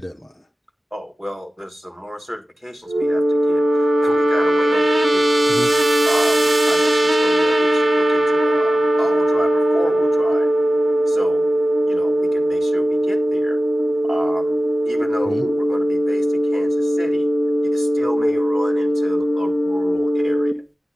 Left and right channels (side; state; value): both; normal; correlation 0.96